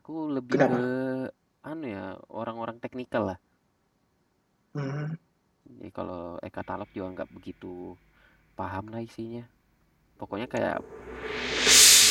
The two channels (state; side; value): identical; both; correlation 1.00